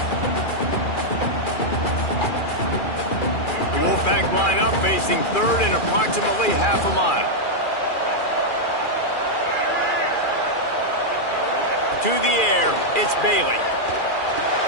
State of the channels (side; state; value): right; late; 2.4 ms